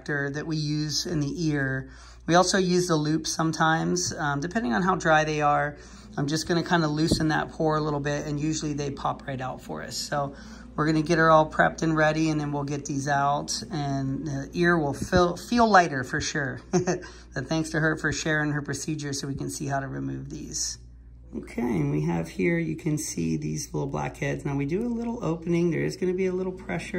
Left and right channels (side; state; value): both; identical; correlation 1.00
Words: that we use in the ear. We also use the loop sometimes, depending on how dry they are. I'm just gonna kind of loosen that pore a little bit, and usually they pop right out for us. So we're gonna get her all prepped and ready, and then we'll get these out, and the ear will feel lighter for sure. But thanks to her for sharing her procedure so we can see how to remove these. Okay, and we have here, you can see these little blackheads. Now we do a little opening. There is gonna be a little